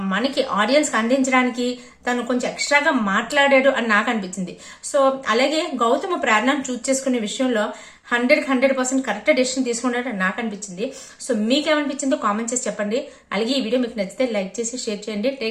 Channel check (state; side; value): identical; both; correlation 1.00